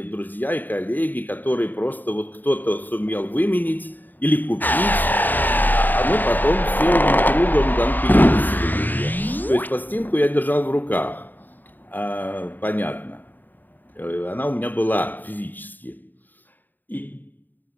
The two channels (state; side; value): late; right; 0.089 ms